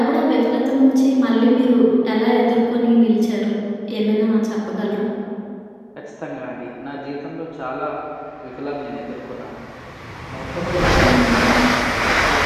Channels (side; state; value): both; identical; correlation 1.00